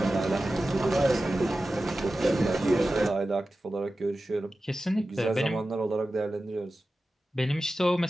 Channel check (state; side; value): normal; both; correlation 0.94